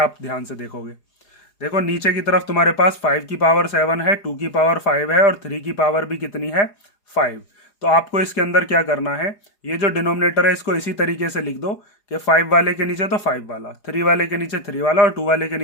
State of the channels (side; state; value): right; late; 4.8 ms